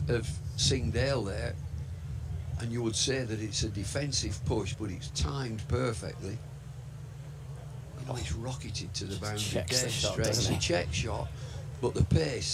Singdale there, and you would say that it's a defensive push, but it's timed perfectly. You know, it's rocketed to the boundary, dead straight. It's a check shot, but the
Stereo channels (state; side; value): identical; both; correlation 1.00